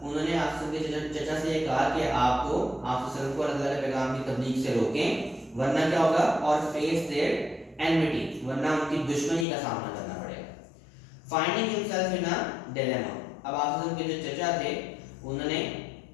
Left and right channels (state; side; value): drops out; right; at 9.5 s